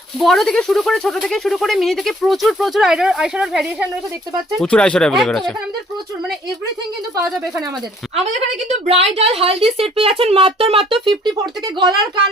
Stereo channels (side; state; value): both; normal; correlation 0.59